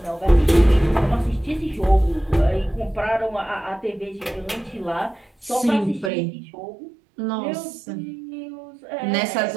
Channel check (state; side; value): drops out; left; at 6.1 s